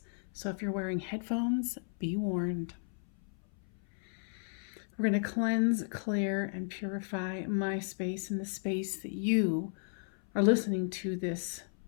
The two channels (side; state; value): right; silent; 55 dB below the other